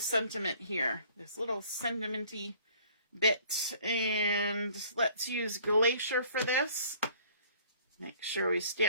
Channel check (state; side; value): inverted; both; correlation -0.55